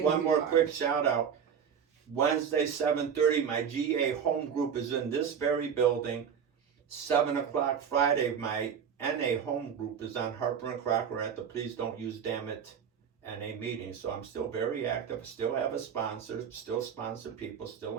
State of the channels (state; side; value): quieter; left; 7.5 dB